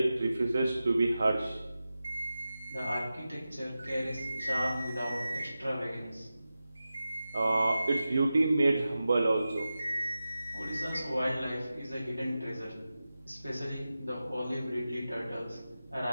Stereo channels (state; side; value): inverted; both; correlation -0.94